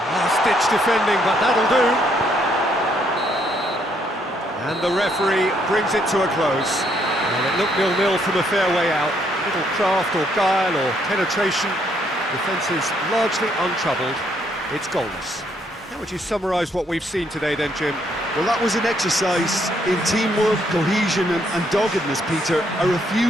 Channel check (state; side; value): normal; both; correlation 0.71